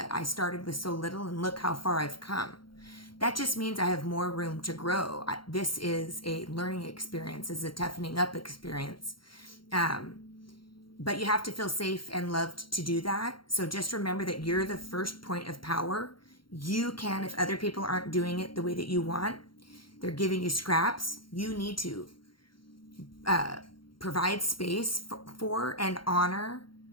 I started with so little and look how far I've come. That just means I have more room to grow. This is a learning experience, is a toughening up experience. but you have to feel safe and loved to do that. So just remember that you're the first point of power. You can, if other people aren't doing it the way that you want, they're giving you scraps, you need to provide space for and honor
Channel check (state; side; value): late; right; 0.73 ms